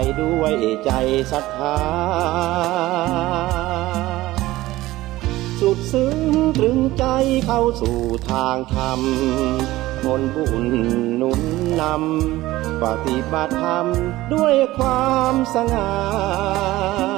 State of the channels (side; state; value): left; quieter; 17.2 dB